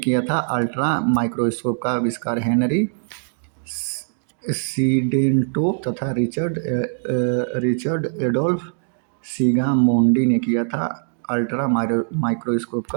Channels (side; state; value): left; silent; digital silence